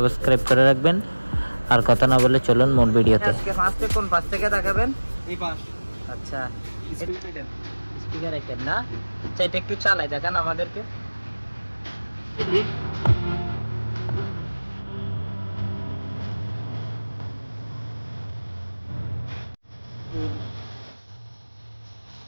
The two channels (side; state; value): both; inverted; correlation -1.00